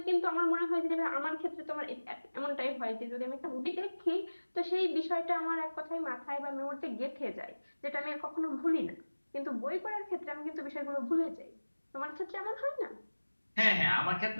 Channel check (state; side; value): inverted; both; correlation -1.00